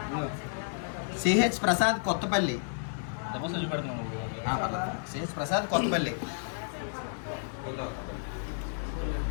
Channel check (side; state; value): right; silent; digital silence